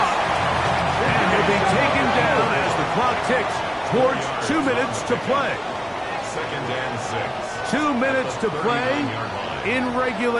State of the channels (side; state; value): both; identical; correlation 1.00